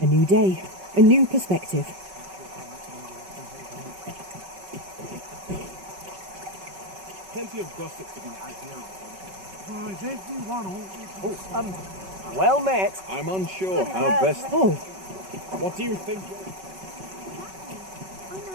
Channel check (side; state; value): left; late; 5.3 ms